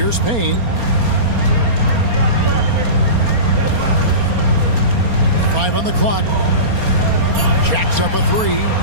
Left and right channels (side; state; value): left; late; 4.3 ms